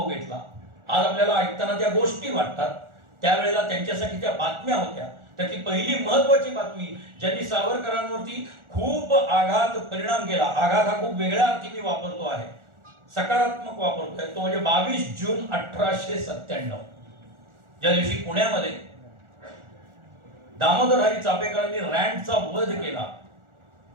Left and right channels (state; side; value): late; left; 1.4 ms